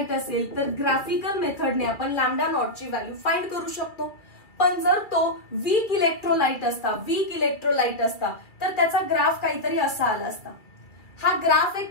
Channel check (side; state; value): right; late; 2.2 ms